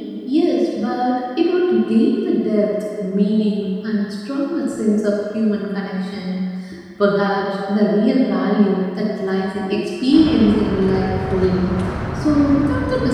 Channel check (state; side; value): identical; both; correlation 1.00